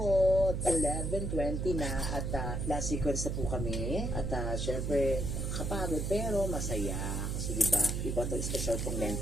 11:20 na at last sequence na po kami. At syempre, kapagod pero masaya. Kasi diba, iba to special pong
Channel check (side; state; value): right; noise; hum, 1 dB below the sound